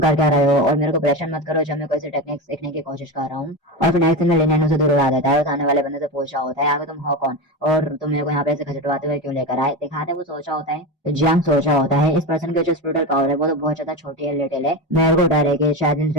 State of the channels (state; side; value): normal; both; correlation 0.20